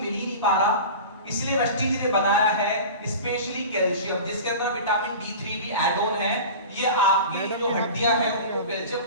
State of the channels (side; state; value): both; inverted; correlation -0.34